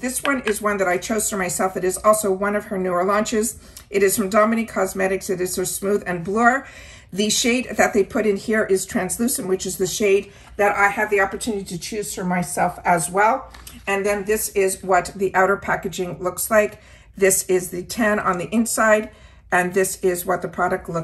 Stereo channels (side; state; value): both; identical; correlation 1.00